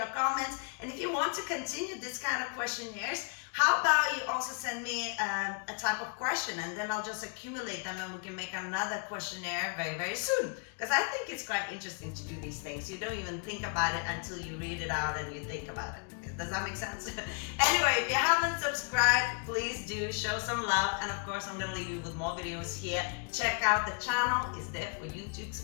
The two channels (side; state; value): right; quieter; 39.7 dB